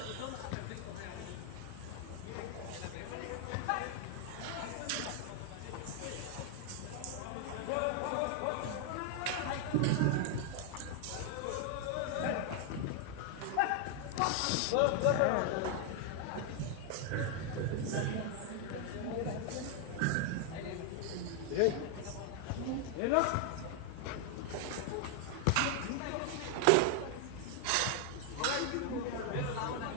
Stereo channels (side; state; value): both; different; correlation 0.00